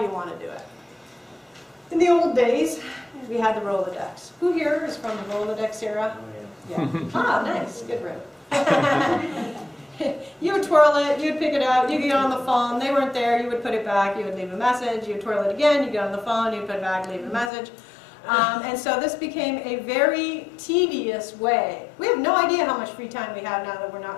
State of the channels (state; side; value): drops out; right; at 17.5 s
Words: you want to do it? In the old days, we had the Rolodex. Who here is from the Rolodex era? Oh, yeah. Ah, nice. Good room. You would twirl it, you'd pick it out, you get on the phone, they weren't there, you would put it back, you would leave a message, you'd twirl it again, you get on the phone, you'd put it back, leave a message. And so this became a very tedious way. We have no idea how much free time we have now that we're